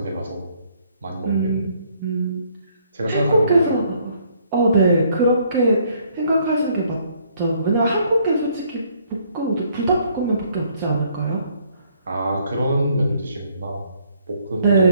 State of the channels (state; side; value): inverted; both; correlation -0.66